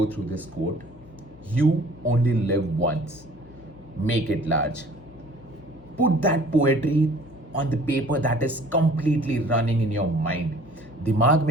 through this quote. You only live once. Make it large. Put that poetry on the paper that is completely running in your mind. दिमाग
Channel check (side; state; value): left; noise; hum, 22 dB below the sound